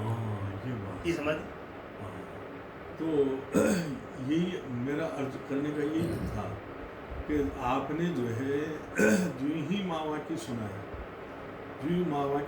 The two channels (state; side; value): identical; both; correlation 1.00